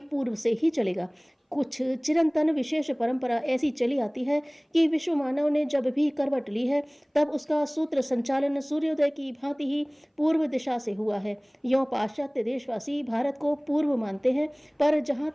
पूर्व से ही चलेगा। कुछ चिरंतन विशेष परंपरा ऐसी चली आती है कि विश्व मानव ने जब भी करवट ली है तब उसका सूत्र संचालन सूर्योदय की भांति ही पूर्व दिशा से हुआ है। यों पाश्चात्य देशवासी भारत को पूर्व मानते हैं, पर जहाँ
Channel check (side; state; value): both; identical; correlation 1.00